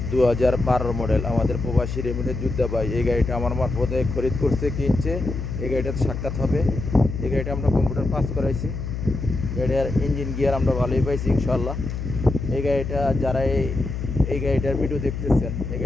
2012 মডেল আমাদের প্রবাসী রেমিডের যোদ্ধা ভাই, এই গাড়িটা আমার মারফতে খরিদ করছে, কিনছে। এই গাড়িটাতে সাক্ষাৎ হবে। এই গাড়িটা আমরা কম্পিউটার পাস করাইছি। গাড়িটার ইঞ্জিন গিয়ার আমরা ভালোই পাইছি ইনশাল্লাহ। এই গাড়িটা যারা এই গাড়িটার ভিডিও দেখতেছেন, এই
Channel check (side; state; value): left; noise; hum, 5 dB below the sound